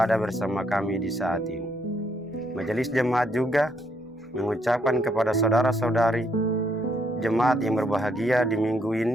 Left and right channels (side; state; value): both; normal; correlation 0.73